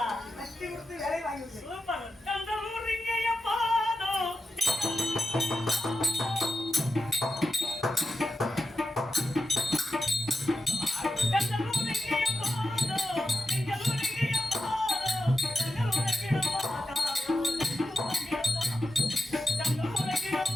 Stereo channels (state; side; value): normal; both; correlation 0.88